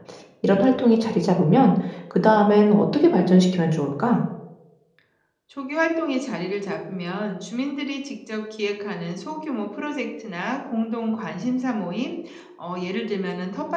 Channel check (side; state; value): both; identical; correlation 1.00